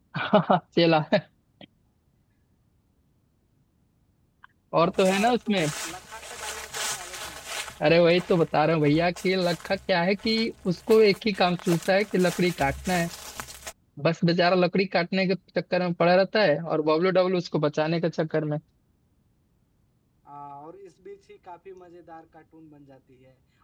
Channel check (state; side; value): identical; both; correlation 1.00